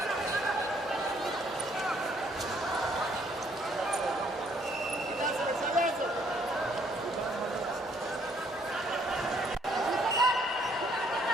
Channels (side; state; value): both; normal; correlation 0.66